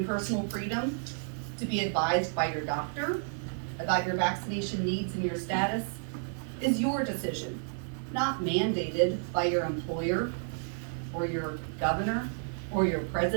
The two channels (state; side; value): silent; left; 56 dB below the other